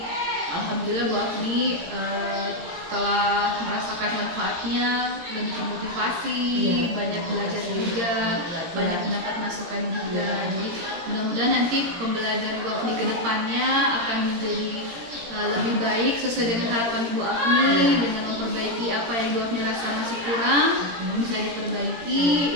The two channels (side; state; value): left; late; 17 ms